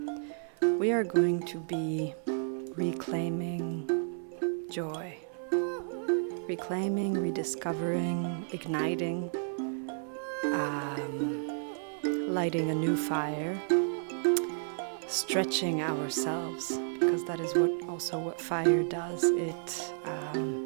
we are going to be reclaiming joy, reclaiming, rediscovering, igniting, lighting a new fire, stretching ourselves, because that is what fire does.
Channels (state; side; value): silent; left; 57 dB below the other